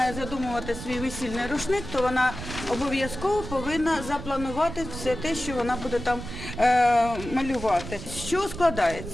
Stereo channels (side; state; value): right; noise; rumble, 10 dB below the sound